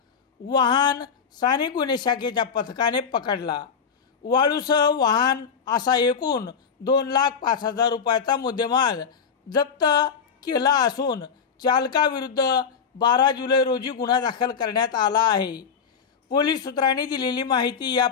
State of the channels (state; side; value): quieter; right; 6.5 dB